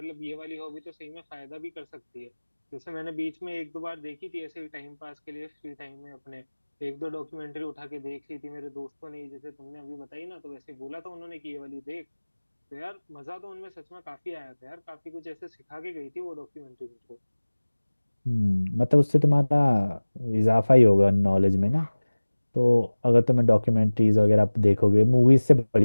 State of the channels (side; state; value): both; inverted; correlation -1.00